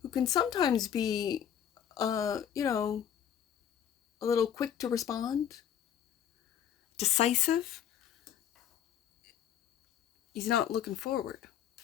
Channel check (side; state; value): right; quieter; 9.4 dB